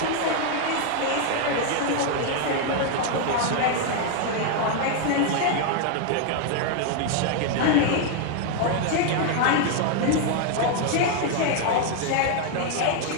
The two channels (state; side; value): different; both; correlation 0.00